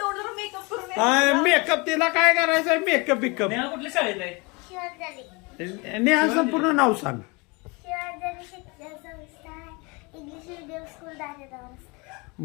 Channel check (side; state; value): right; quieter; 28.0 dB